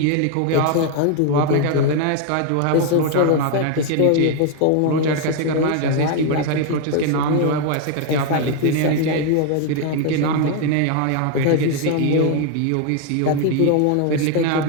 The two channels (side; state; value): both; different; correlation 0.01